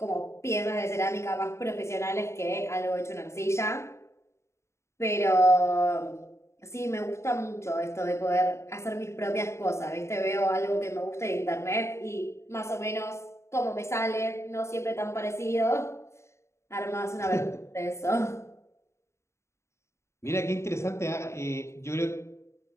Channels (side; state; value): right; late; 0.13 ms